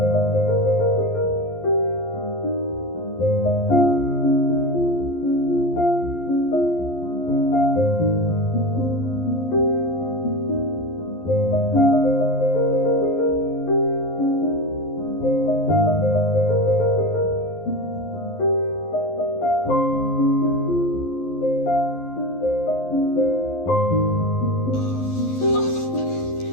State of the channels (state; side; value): late; right; 11 ms